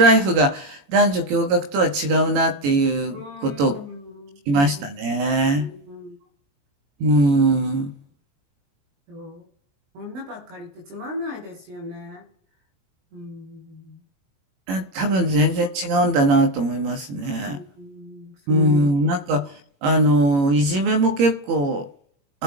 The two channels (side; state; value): left; late; 21 ms